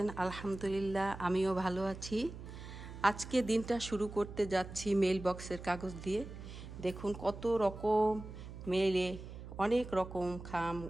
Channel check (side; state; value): right; noise; hum, 12 dB below the sound